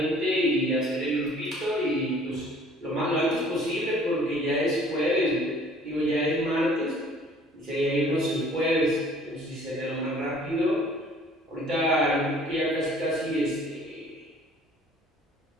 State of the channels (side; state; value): both; normal; correlation 0.54